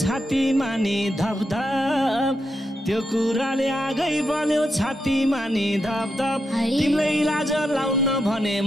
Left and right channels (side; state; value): both; normal; correlation 0.85